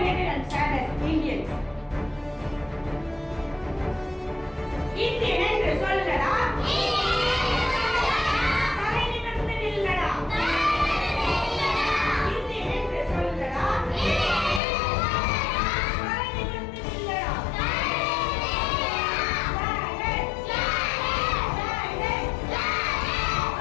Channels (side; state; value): right; drops out; at 14.6 s